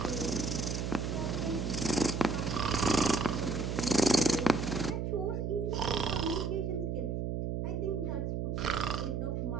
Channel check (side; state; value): right; noise; hum, 1 dB below the sound